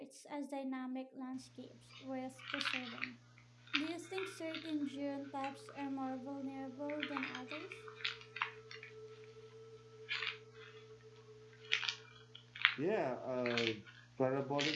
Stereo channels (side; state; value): both; identical; correlation 1.00